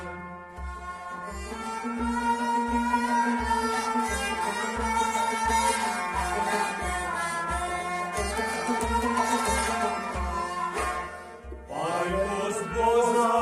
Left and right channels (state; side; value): identical; both; correlation 1.00